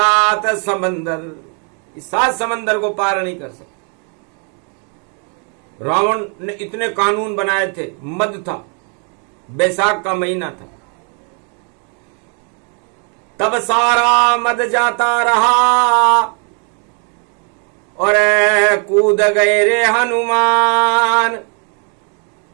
समंदर। इस 7 समंदर को पार नहीं कर सकते। रावण ने इतने कानून बनाए थे, मद था, बैसाख का महीना था, तब सारा मद जाता रहा और कूद गए रे हनुमान,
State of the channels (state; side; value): quieter; left; 38.6 dB